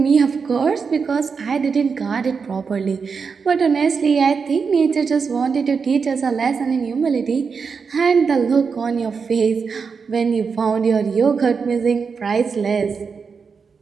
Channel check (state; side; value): quieter; left; 5.5 dB